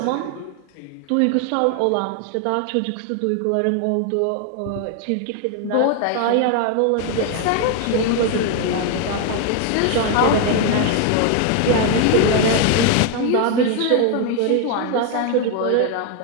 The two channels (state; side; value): different; both; correlation 0.01